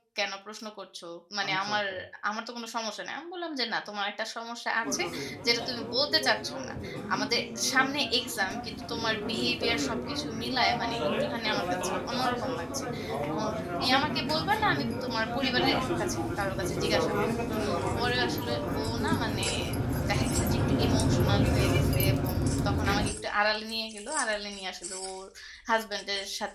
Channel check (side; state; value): both; identical; correlation 1.00